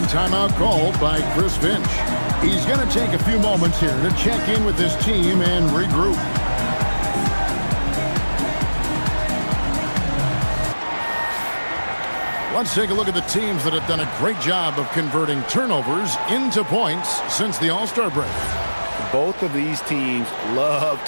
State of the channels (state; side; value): inverted; both; correlation -1.00